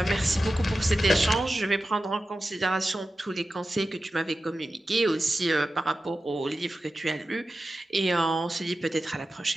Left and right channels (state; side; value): normal; both; correlation 0.93